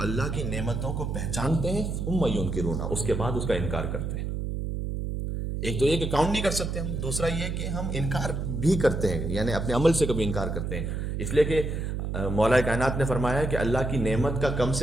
کی نعمتوں کو پہچانتے ہیں ثم ینکرونہا، اس کے بعد اس کا انکار کرتے ہیں. ایک تو یہ کہ کاؤنٹ نہیں کر سکتے ہم، دوسرا یہ کہ ہم انکار بھی کرتے ہیں، یعنی اپنے عمل سے کبھی انکار کرتے ہیں. اس لیے کہ مولا کائنات نے فرمایا کہ اللہ کی نعمت کا کم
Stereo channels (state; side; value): noise; right; hum, 3 dB below the sound